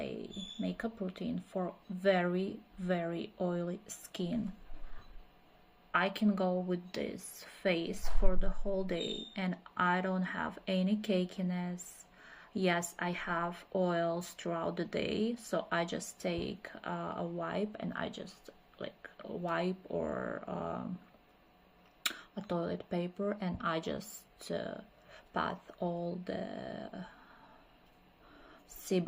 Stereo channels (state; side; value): identical; both; correlation 1.00